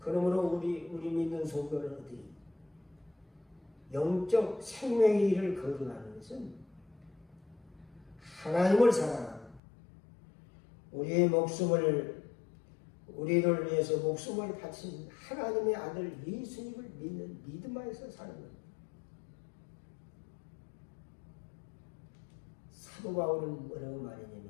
우리 믿는 성도는 어떻게 영적 생명의 일을 거듭하는 것은 하나님을 사랑하고 우리를 위해서 목숨을 바친 하나님의 아들 예수님을 믿는 믿음 안에서 사는 겁니다. 사도 바울은 뭐라고 말했냐면,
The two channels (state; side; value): drops out; right; at 9.6 s